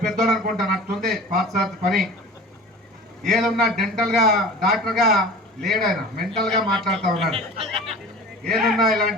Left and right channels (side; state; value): both; normal; correlation 0.39